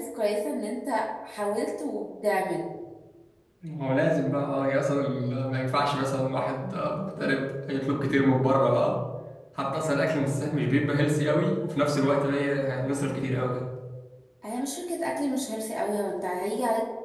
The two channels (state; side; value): identical; both; correlation 1.00